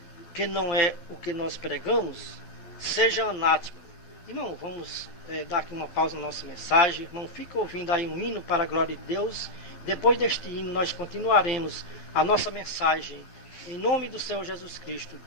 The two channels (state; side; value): late; right; 12 ms